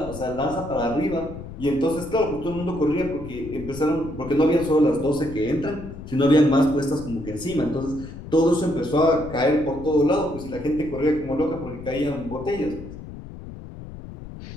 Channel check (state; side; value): noise; left; rumble, 13 dB below the sound